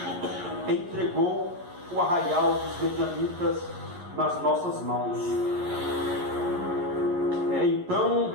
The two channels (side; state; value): left; late; 11 ms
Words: entregou o arraial dos medianitas nas nossas mãos. Então